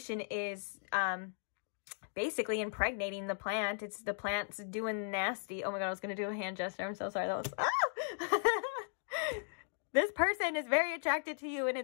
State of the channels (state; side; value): silent; right; digital silence